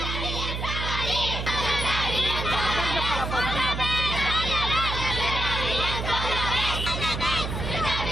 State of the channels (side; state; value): right; noise; hum, 4 dB below the sound